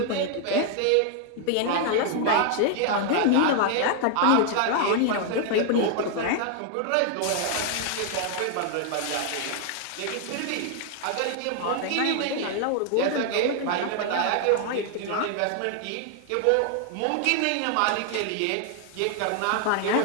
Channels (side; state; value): both; different; correlation 0.00